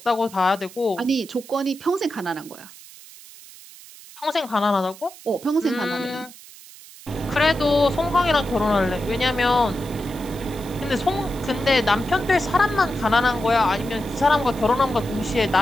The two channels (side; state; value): right; noise; hiss, 19 dB below the sound